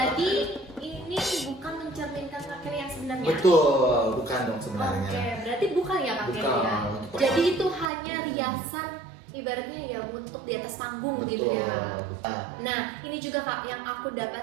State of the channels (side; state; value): left; drops out; at 7.9 s